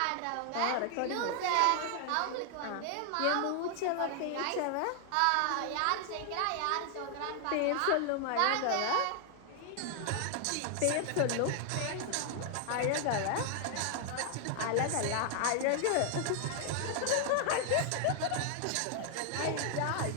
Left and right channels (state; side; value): different; both; correlation 0.00